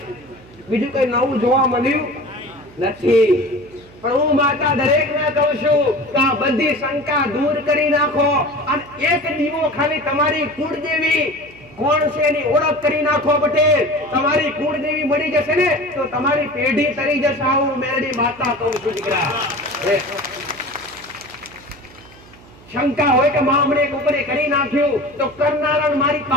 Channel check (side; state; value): right; noise; hum, 23 dB below the sound